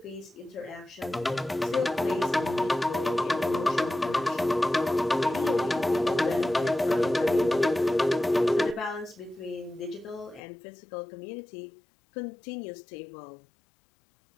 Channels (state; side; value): drops out; right; at 10.4 s